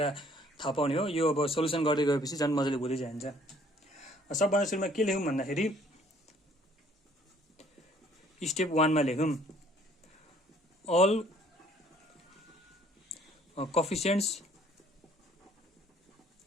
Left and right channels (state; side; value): normal; both; correlation 0.59